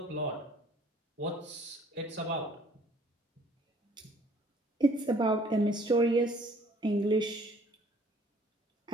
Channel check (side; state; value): both; normal; correlation 0.58